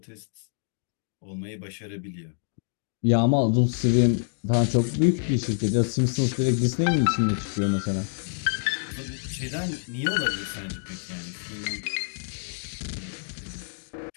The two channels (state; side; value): silent; right; digital silence